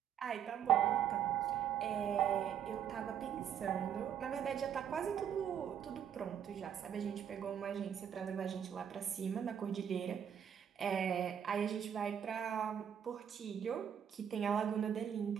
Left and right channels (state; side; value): quieter; left; 8.9 dB